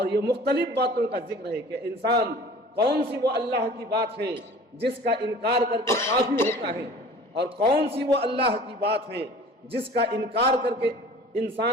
یہ مختلف باتوں کا ذکر ہے کہ انسان کون سی وہ اللہ کی بات ہے جس کا انکار کر کے کافر ہوتا ہے، اور کون سی وہ اللہ کی بات ہے جس کا انکار کر کے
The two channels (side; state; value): both; normal; correlation 0.45